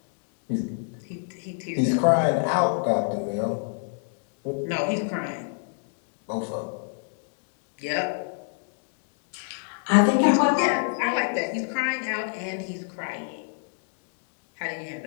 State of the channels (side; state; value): right; silent; 60 dB below the other